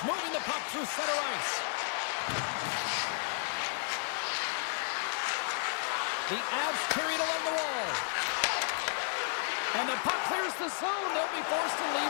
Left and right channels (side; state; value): right; silent; digital silence